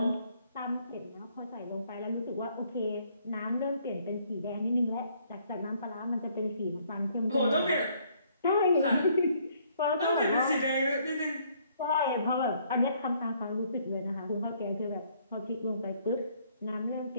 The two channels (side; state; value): both; inverted; correlation -0.65